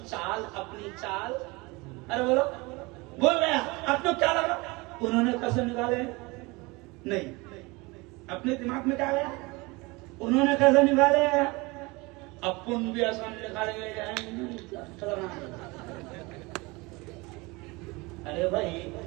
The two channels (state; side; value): quieter; left; 24.8 dB